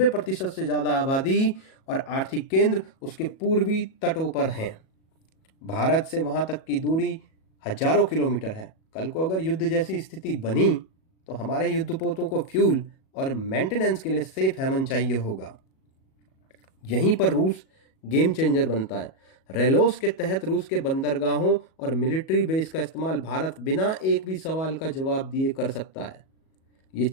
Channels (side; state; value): right; late; 37 ms